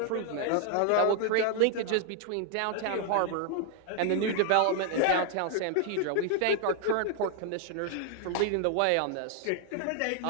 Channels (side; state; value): both; different; correlation 0.00